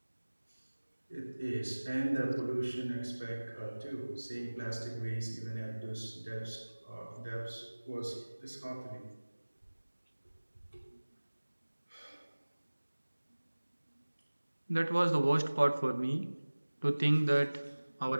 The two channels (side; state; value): both; inverted; correlation -1.00